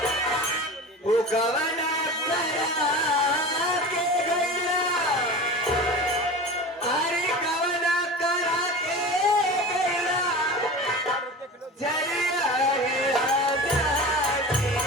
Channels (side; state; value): both; normal; correlation 0.32